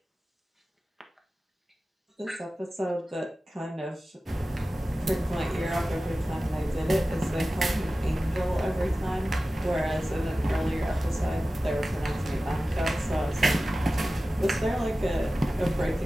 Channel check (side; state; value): both; normal; correlation 0.95